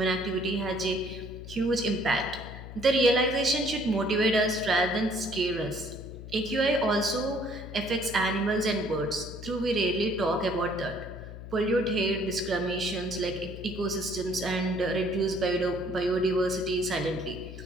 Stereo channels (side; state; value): left; noise; hum, 12 dB below the sound